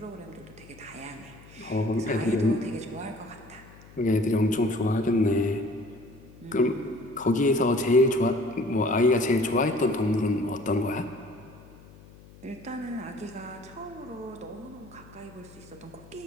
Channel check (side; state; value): left; noise; hum, 22 dB below the sound